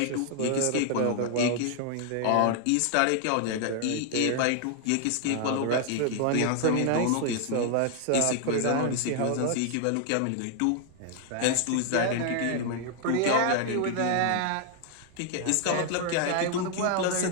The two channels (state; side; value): different; both; correlation 0.00